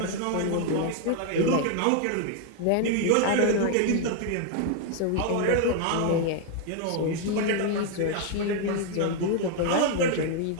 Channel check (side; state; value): both; different; correlation 0.01